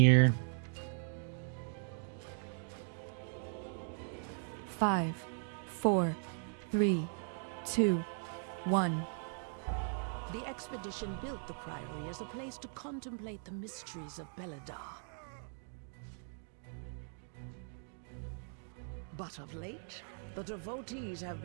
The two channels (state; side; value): silent; left; 52 dB below the other